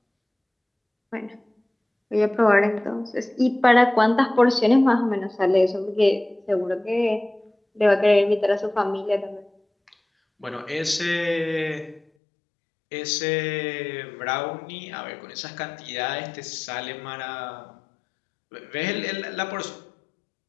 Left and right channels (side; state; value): right; drops out; at 12.0 s